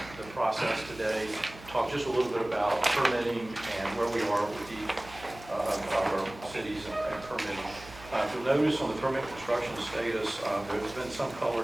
process today, talk just a little bit about permitting and where we are with each of our cities and permitting. If you'll notice on the permit construction status, there's been some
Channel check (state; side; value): noise; right; hum, 18 dB below the sound